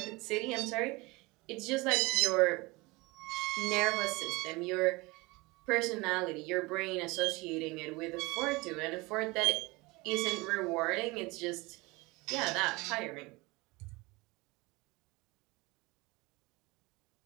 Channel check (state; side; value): quieter; left; 23.8 dB